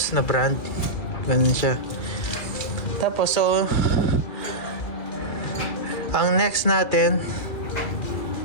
na brand. Ganun siya. Tapos, so, ang next natin,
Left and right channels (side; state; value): right; late; 2.4 ms